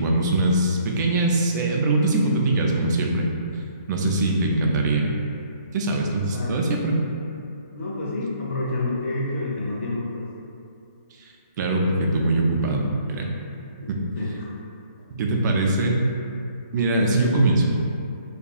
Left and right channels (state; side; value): inverted; both; correlation -0.61